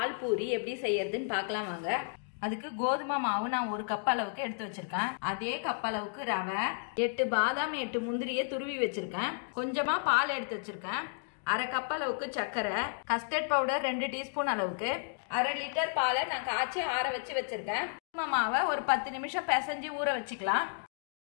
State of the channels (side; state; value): right; silent; digital silence